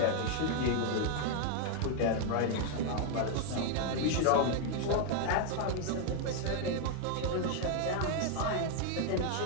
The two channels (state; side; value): different; both; correlation 0.01